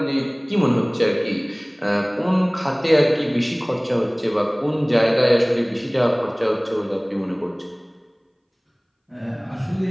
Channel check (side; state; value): both; identical; correlation 1.00